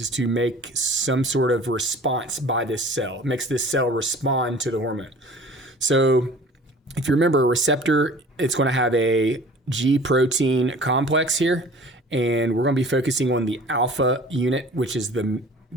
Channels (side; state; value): both; normal; correlation 0.46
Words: to make some sort of response by this cell. It makes this cell respond to the hormone. So if you remember, a receptor, it's going to have a G protein complex here, and we're going to be focusing on the alpha unit, which is the